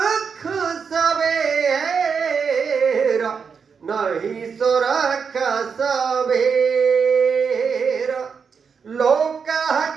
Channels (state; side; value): quieter; left; 6.0 dB